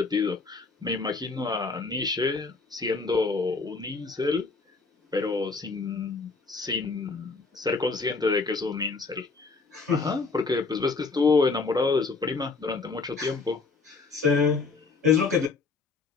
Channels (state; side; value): quieter; right; 4.3 dB